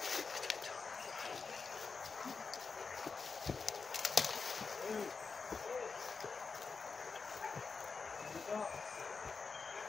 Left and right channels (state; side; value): quieter; right; 4.9 dB